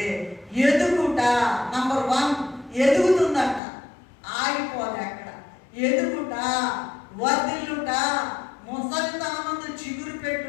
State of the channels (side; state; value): right; drops out; at 3.6 s